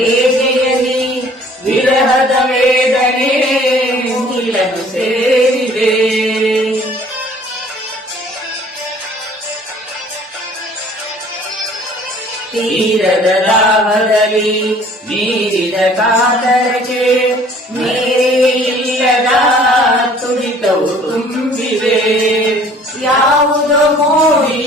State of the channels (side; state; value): both; normal; correlation 0.53